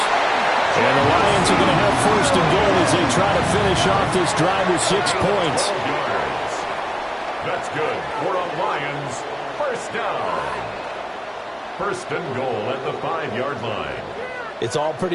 And the Lions are going to have first and goal as they try to finish off this drive with 6 points. That's good for a Lions first down. First and goal at the 5-yard line. It's all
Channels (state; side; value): identical; both; correlation 1.00